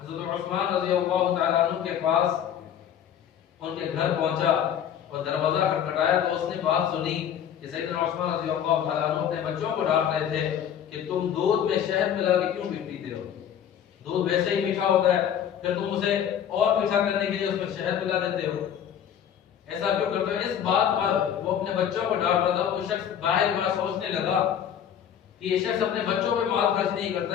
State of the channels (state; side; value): quieter; right; 9.3 dB